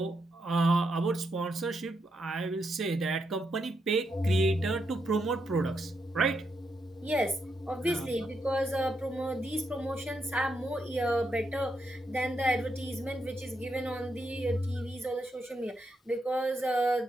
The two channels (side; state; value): both; normal; correlation 0.82